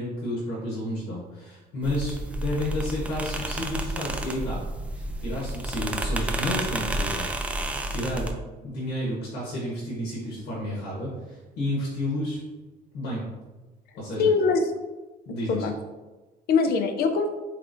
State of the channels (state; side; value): normal; both; correlation 0.49